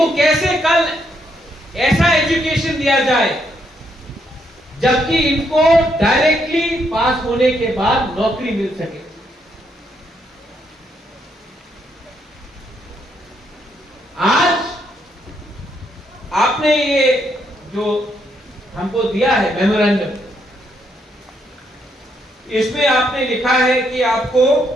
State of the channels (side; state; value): both; normal; correlation 0.75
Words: कैसे कल ऐसा एजुकेशन दिया जाए जबकि इनको डायरेक्टली पास होने के बाद नौकरी मिल सके। आज आपने ये जो हमको दिया है मेमोरेंडम, इसमें आपने लिखा है कि आपको